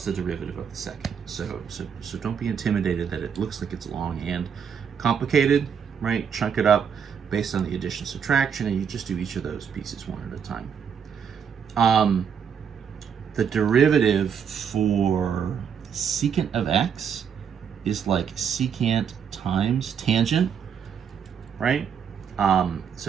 the derivative of the second. So don't be intimidated that it looks like it's long and complicated, right? Chunk it up based on the addition subtraction, and you just do each of those pieces one at a time. The derivative for secant of x is like secant times tangent, right?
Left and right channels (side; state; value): left; quieter; 7.4 dB